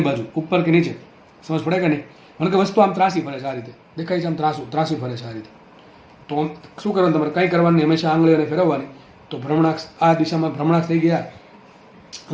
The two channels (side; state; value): both; identical; correlation 1.00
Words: બાજુ, ઉપર કે નીચે. સમજ પડે કે નહીં? કારણ કે વસ્તુ આમ ત્રાસી ફરે છે આ રીતે, દેખાય છે આમ ત્રાસી ફરે છે આ રીતે. તો શું કરવાનું તમારે? કંઈ કરવાની, હંમેશા આંગળીઓને ફેરવવાની. તો ભ્રમણાક્ષ આ દિશામાં ભ્રમણાક્ષ થઈ ગયા,